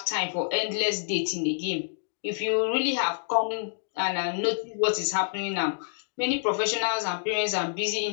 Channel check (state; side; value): silent; right; digital silence